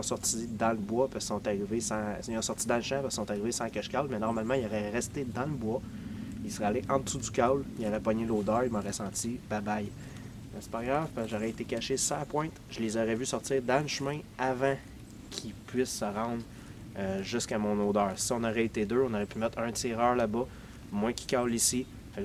sorti dans le bois parce qu'ils sont arrivés sans. Ils ont sorti dans le champ parce qu'ils sont arrivés sans que je cale, mais normalement, ils auraient resté dans le bois. Ils seraient allés en dessous du call, ils auraient pogné l'odeur, ils m'auraient senti bye bye. Mais c'est pas grave, parce que j'aurais été caché sur la pointe. Je les aurais vus sortir dans le chemin avant qu'ils puissent se rendre jusqu'à mon odeur. Si on aurait été deux, on aurait pu mettre un tireur là-bas, moi qui cale ici. Fait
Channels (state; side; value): identical; both; correlation 1.00